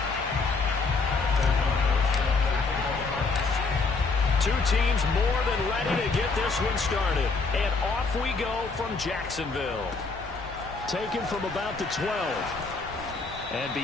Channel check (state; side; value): quieter; right; 4.1 dB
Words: Two teams more than ready to get this one started. And off we go from Jacksonville. Taken from about the 12. And